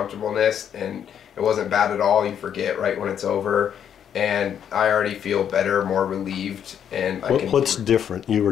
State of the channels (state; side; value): quieter; right; 8.9 dB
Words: and it wasn't bad at all. You forget right when it's over, and I already feel better, more relieved. And what's different? You